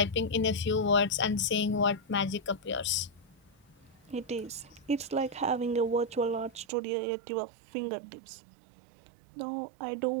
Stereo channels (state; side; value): drops out; left; at 6.7 s